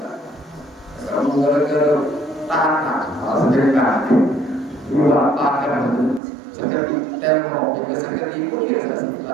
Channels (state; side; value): drops out; left; at 6.2 s